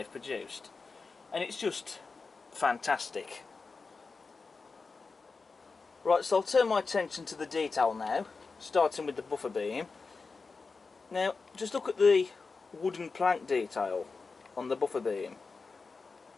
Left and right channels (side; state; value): right; quieter; 4.4 dB